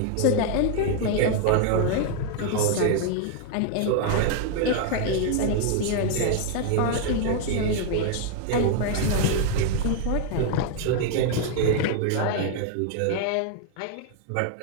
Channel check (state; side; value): different; both; correlation 0.00